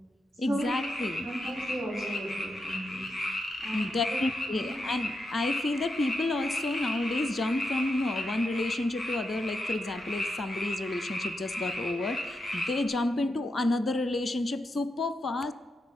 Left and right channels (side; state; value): both; normal; correlation 0.85